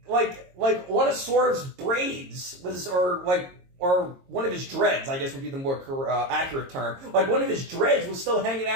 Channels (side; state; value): left; late; 22 ms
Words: like one of Swerve's braids was or one of his dreads, I guess would be the more accurate term. Like one of his dreads was still hanging